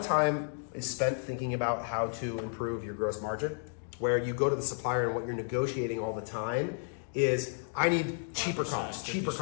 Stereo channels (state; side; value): silent; right; digital silence